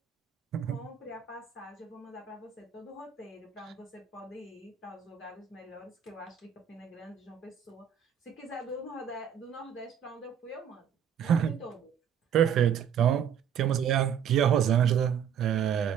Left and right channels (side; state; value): left; quieter; 8.5 dB